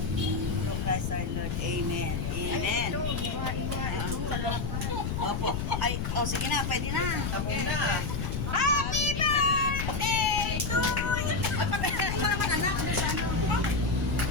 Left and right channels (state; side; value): noise; left; rumble, 2 dB below the sound